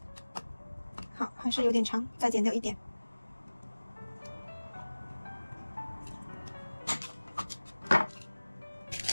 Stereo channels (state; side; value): inverted; both; correlation -1.00